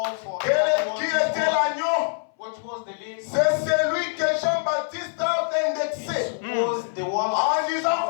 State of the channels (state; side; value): silent; right; 61 dB below the other